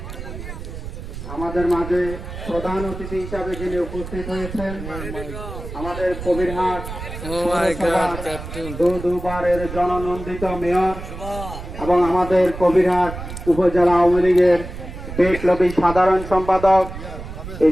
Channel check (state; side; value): noise; right; rumble, 10 dB below the sound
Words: আমাদের মাঝে প্রধান অতিথি হিসাবে যিনি উপস্থিত হয়েছেন আমাদের কবিরহাট দুবারের জননন্দিত মেয়র এবং আমাদের কবিরহাট উপজেলা আওয়ামী লীগের বিপ্লবী সাধারণ সম্পাদক, এই